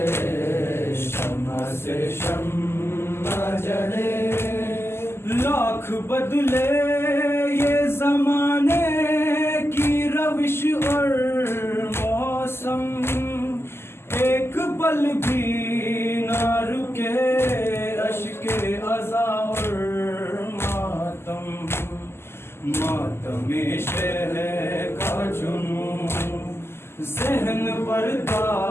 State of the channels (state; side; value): late; right; 0.12 ms